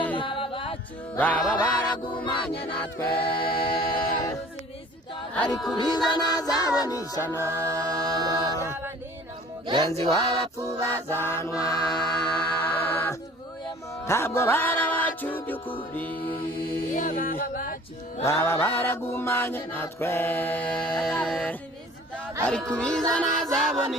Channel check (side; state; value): both; normal; correlation 0.49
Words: baba baragumanye natwe ariko ubizana azabona ishyano mugenzi w'abapfu bazanwa ntabwo barabacu by'ukuri baba baragumanye natwe ariko ubizana azabona